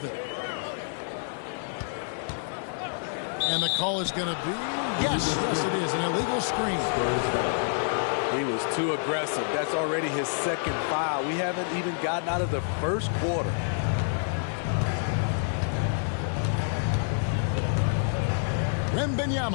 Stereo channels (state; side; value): silent; right; 59 dB below the other